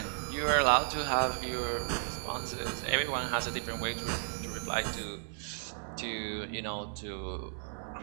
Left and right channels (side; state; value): left; silent; 55 dB below the other